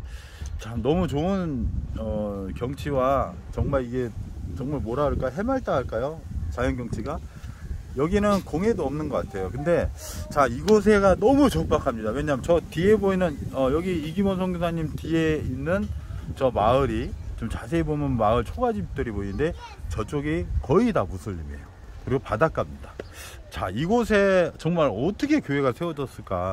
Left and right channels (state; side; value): identical; both; correlation 1.00